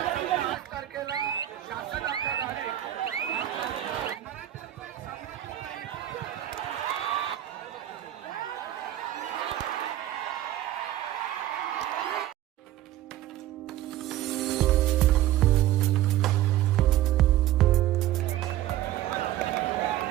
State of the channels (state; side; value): quieter; left; 13.6 dB